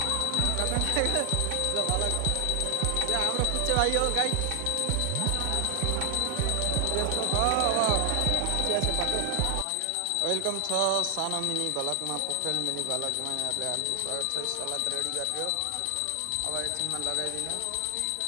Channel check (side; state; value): both; different; correlation 0.00